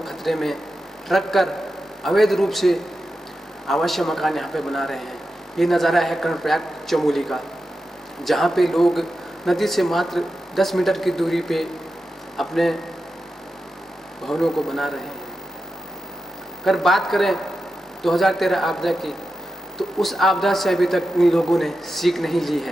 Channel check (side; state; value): both; normal; correlation 0.90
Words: खतरे में रख कर अवैध रूप से अवश्य मकान यहाँ पे बना रहे हैं। ये नज़ारा है कर्णप्रयाग चमोली का, जहाँ पे लोग नदी से मात्र 10 मीटर की दूरी पे अपने भवनों को बना रहे हैं। अगर बात करें 2013 आपदा की, तो उस आपदा से अभी तक इन लोगों ने सीख नहीं ली